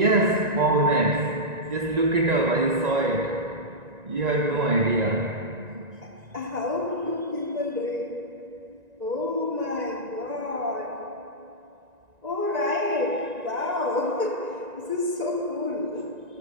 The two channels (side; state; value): left; late; 1.9 ms